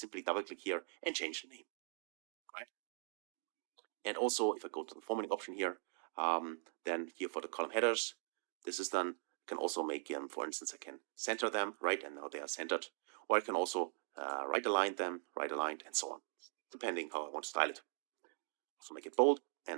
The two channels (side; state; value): left; silent; digital silence